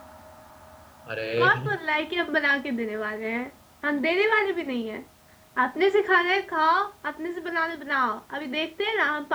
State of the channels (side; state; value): both; identical; correlation 1.00